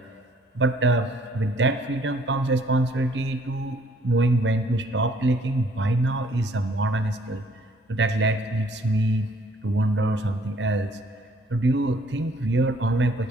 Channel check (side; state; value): both; normal; correlation 0.62